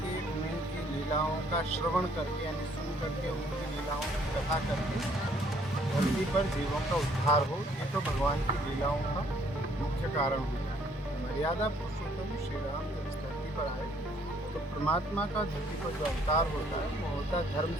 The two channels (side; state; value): both; normal; correlation 0.64